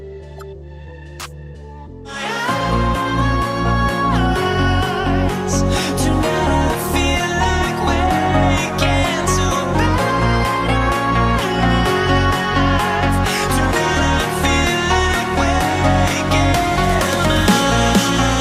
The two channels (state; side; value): identical; both; correlation 1.00